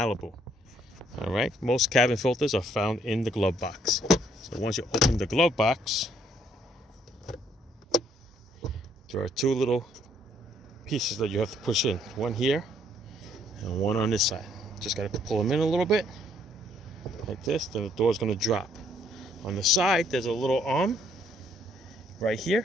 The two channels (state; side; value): normal; both; correlation 0.67